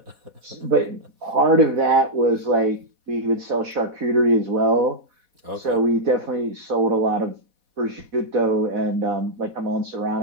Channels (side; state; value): left; late; 4.1 ms